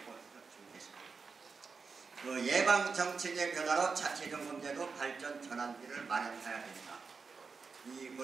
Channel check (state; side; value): quieter; left; 4.9 dB